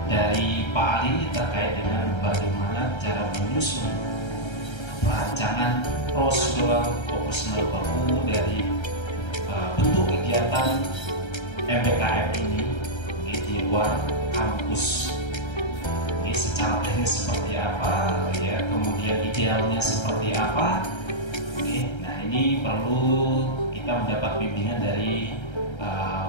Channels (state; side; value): late; right; 1.3 ms